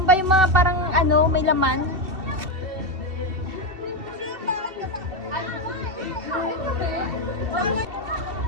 ba yung mga parang ano, may laman?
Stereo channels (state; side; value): late; left; 2.7 ms